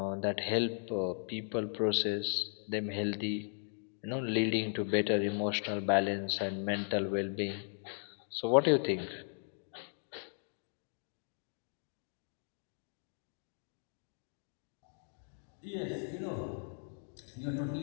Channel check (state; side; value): silent; right; 53 dB below the other